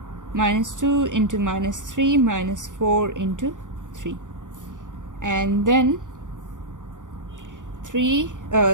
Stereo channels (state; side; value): late; left; 0.87 ms